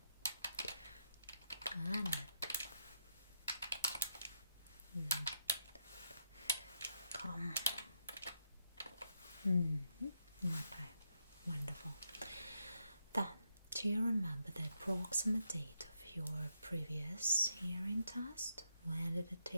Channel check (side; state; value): both; inverted; correlation -0.80